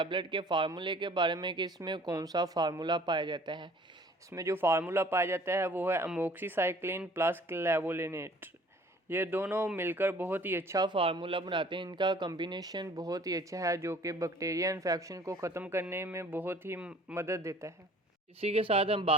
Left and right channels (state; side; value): normal; both; correlation 0.52